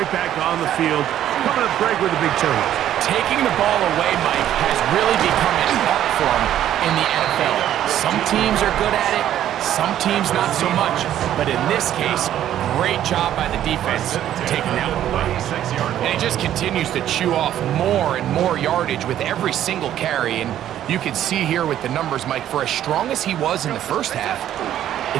back on the field. Coming up, Greg, with a big turnover. Taking the ball away, Mike, has really become an art form in the NFL. Some teams are good at it, some teams not so much. But in this case, great job by the defense taking that one away. And he just continues to chew off more and more yardage with every single carry. And you can see here with the numbers, Mike, for as strong as he was in the first half,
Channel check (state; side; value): quieter; left; 11.5 dB